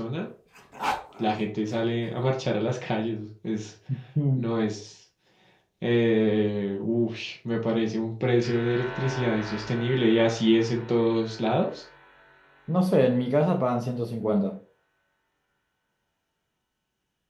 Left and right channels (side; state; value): both; identical; correlation 1.00